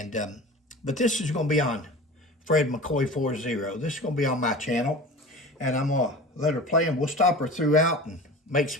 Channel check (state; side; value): normal; both; correlation 0.36